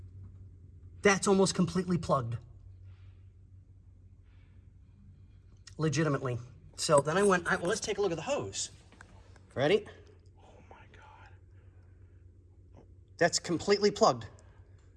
That's almost completely plugged. Legitimately. So then I went, well, let's take a look at the hose. Ready? Oh, my God. That's completely plugged.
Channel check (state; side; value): identical; both; correlation 1.00